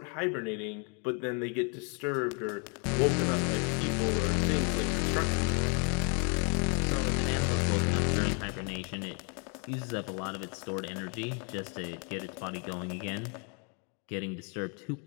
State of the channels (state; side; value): quieter; right; 37.7 dB